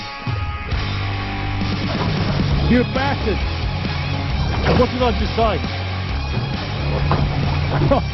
You bastard! What did I just say?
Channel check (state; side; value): identical; both; correlation 1.00